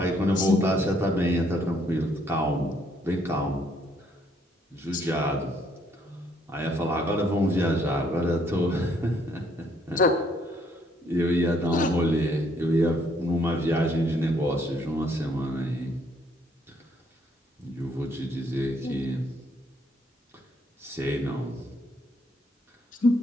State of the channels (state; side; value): normal; both; correlation 0.68